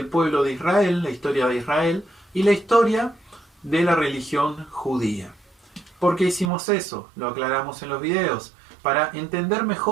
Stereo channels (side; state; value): left; drops out; at 6.5 s